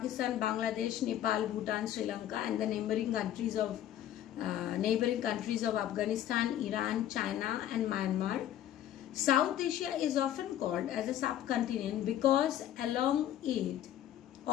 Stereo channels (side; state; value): right; quieter; 11.6 dB